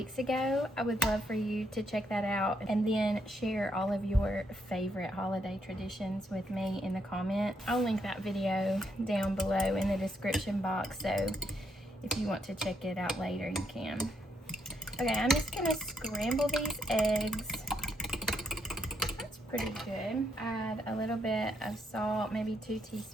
ago. I would love for you to check that out and then share all of your favorite holiday traditions with me in the comment. I'll link that video down below in the description box, so if you want to check it out later, you can. Okay, I'm just gonna scramble these eggs. That's pretty good. Add a little bit of salt, maybe 2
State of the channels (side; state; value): both; normal; correlation 0.76